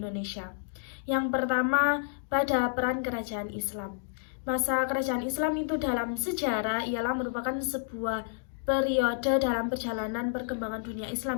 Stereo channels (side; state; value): right; silent; digital silence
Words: Yang pertama, pada peran kerajaan Islam. Masa kerajaan Islam itu dalam sejarah ialah merupakan sebuah periode dalam perjalanan perkembangan dunia